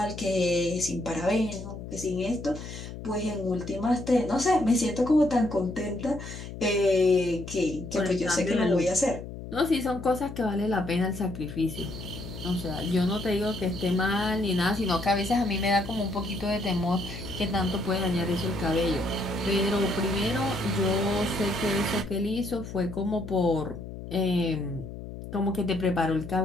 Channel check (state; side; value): noise; left; hum, 11 dB below the sound